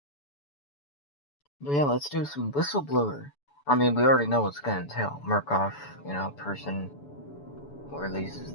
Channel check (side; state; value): right; late; 7.0 ms